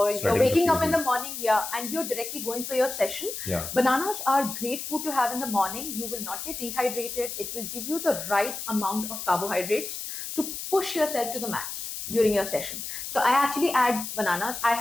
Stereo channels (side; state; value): left; noise; hiss, 7 dB below the sound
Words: you're waking up in the morning, and you're directly going for your session. Yeah. Bananas are great food to have in the morning. You will not get dehydrated. It will give you the right amount of carbohydrates to push yourself to the max during your session. So I actually add bananas. I